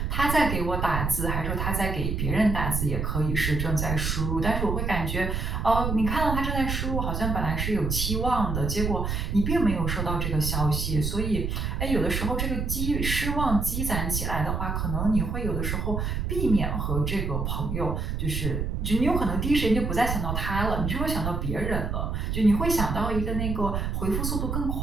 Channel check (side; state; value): right; noise; rumble, 1 dB below the sound